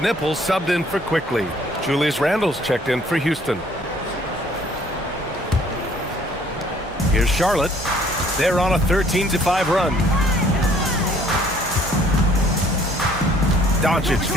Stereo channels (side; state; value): both; normal; correlation 0.59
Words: subbed in for Quickly. Julius Randle's checked in for Houston. Here's Charlotte. They're on a 13-5 run. Doncic